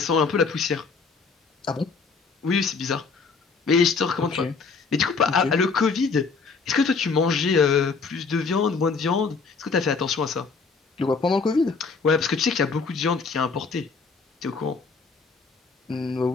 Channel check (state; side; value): quieter; right; 4.7 dB